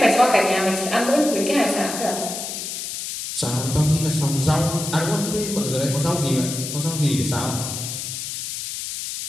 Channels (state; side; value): noise; left; hiss, 6 dB below the sound